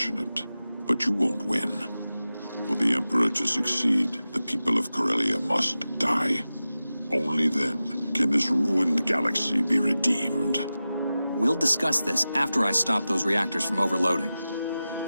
but you won't win. For the Emperor to succeed, the people of Corellia must die. Only then can this ruined galaxy be redeemed. We'll discuss this after I stop those reactors from overloading.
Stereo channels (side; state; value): both; inverted; correlation -0.95